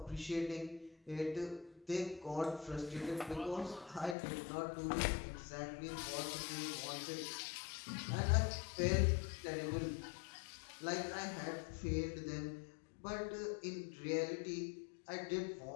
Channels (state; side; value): drops out; right; at 4.2 s